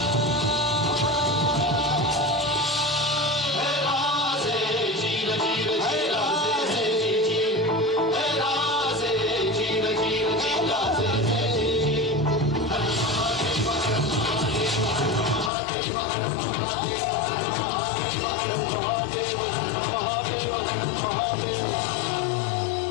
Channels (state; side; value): drops out; right; at 15.5 s